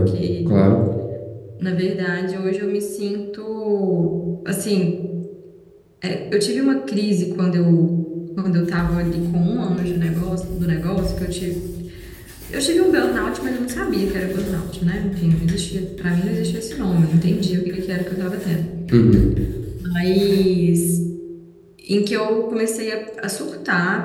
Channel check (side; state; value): both; identical; correlation 1.00